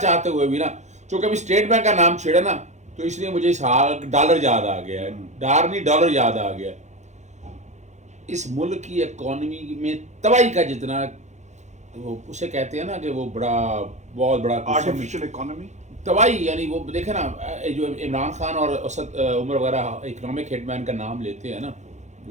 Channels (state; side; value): late; left; 0.34 ms